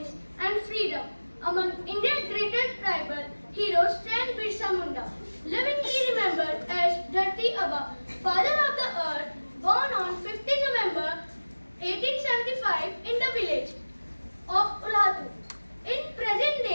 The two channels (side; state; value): both; inverted; correlation -1.00